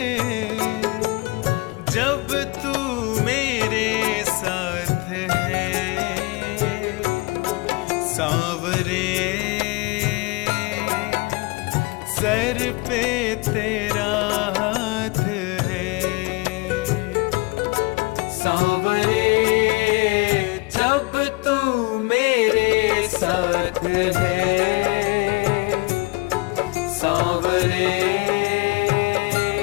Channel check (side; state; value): right; quieter; 24.9 dB